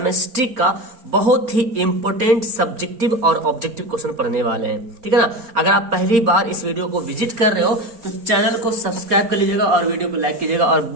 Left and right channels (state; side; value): late; left; 4.4 ms